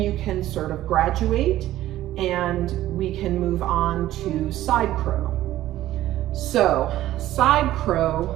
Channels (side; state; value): left; quieter; 14.2 dB